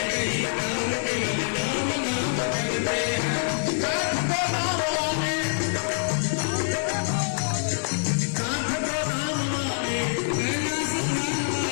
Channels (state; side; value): silent; right; digital silence